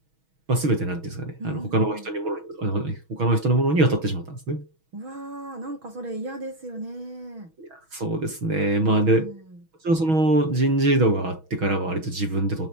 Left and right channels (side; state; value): left; late; 6.2 ms